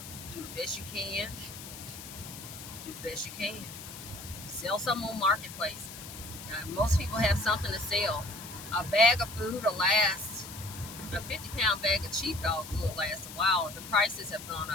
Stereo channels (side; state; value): left; noise; hiss, 12 dB below the sound